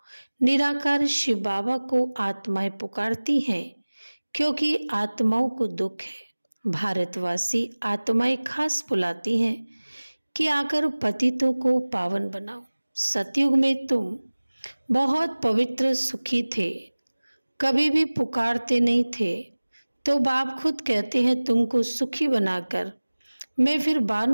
निराकार शिव बाबा को आत्माएं पुकारती हैं क्योंकि आत्माओं को दुख है। भारतवासी आत्माएं खास बुलाती हैं कि आकर पतितों को पावन बनाओ। सतयुग में तुम बहुत पवित्र सुखी थे, कभी भी पुकारते नहीं थे, तो बाप खुद कहते हैं तुमको सुखी बनाकर मैं फिर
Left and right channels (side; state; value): both; inverted; correlation -1.00